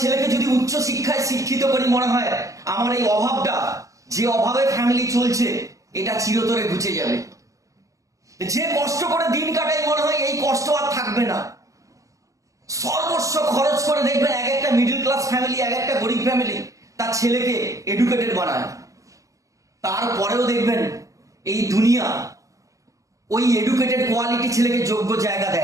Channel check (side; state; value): left; late; 0.16 ms